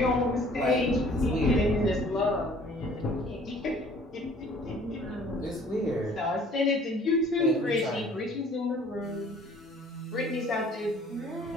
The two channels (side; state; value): both; normal; correlation 0.54